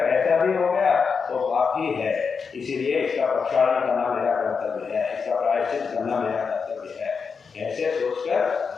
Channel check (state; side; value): quieter; right; 5.6 dB